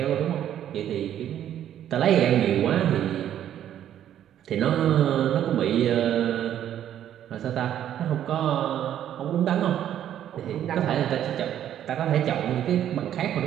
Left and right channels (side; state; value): left; quieter; 10.8 dB